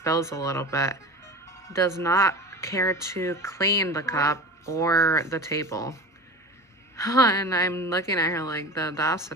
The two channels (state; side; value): normal; both; correlation 0.32